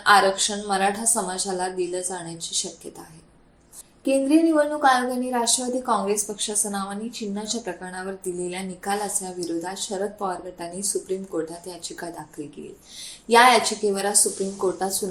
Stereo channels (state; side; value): identical; both; correlation 1.00